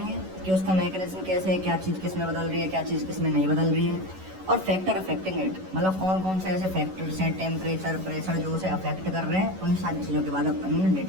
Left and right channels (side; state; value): left; late; 11 ms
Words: कि उसका मैकेनिज्म कैसे है, क्या चीज़ किस में बदल रही है, क्या चीज़ किस में नहीं बदल रही है, और फैक्टर अफेक्टिंग इट, मतलब कौन कौन से ऐसे फैक्टर्स हैं, टेम्परेचर, प्रेशर जो उसे अफेक्ट कर रहे हैं, उन सारी चीज़ों के बाद अपन